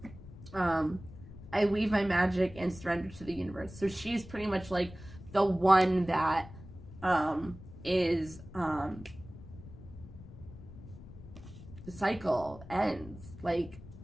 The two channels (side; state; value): left; noise; rumble, 16 dB below the sound